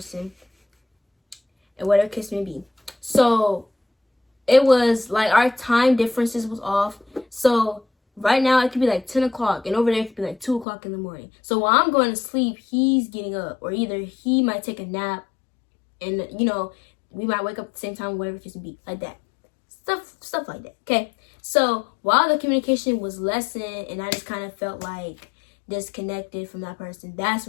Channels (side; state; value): right; drops out; at 10.7 s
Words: and whatever case may be. So it was like our time differences was off. So right now it could be like 10 o'clock, and over there it could be like 2 o'clock in the morning. So while I'm going to sleep, he's getting up, or either he might take a nap, and we might wake up at the same time, whatever case may be, like that. Stuff like that. Okay. So while the communication was lessened and I just kind of felt like disconnected from that person, that's